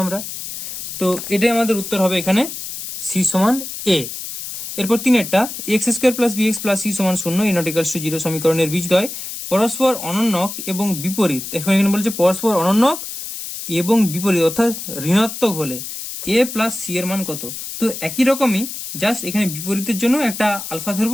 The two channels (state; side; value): noise; left; hiss, 8 dB below the sound